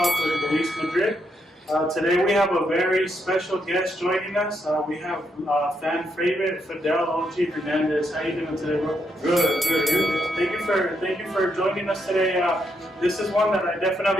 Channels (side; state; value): both; normal; correlation 0.79